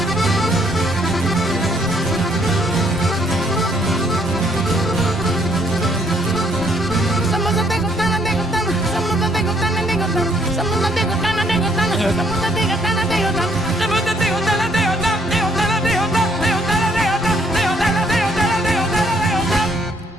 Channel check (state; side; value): normal; both; correlation 0.67